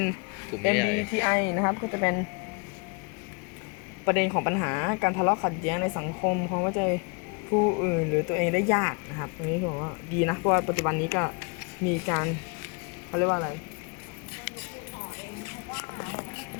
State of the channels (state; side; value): quieter; right; 33.9 dB